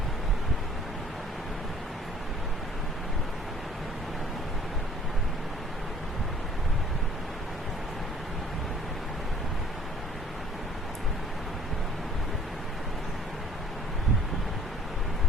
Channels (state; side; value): normal; both; correlation 0.55